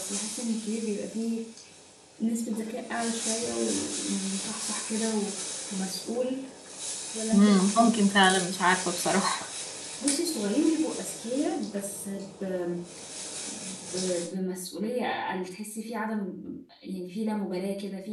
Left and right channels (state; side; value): identical; both; correlation 1.00